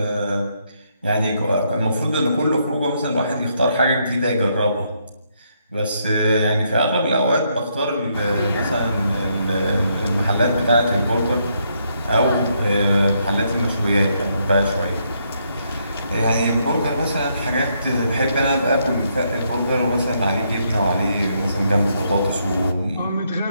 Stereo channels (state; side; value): inverted; both; correlation -0.75